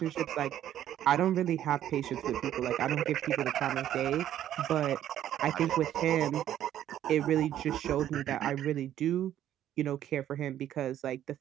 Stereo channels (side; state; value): left; quieter; 11.5 dB